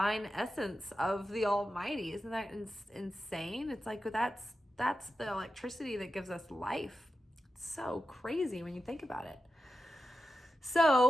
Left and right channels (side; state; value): both; normal; correlation 0.91